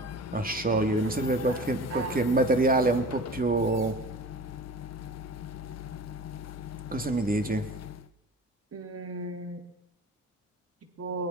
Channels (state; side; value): normal; both; correlation 0.38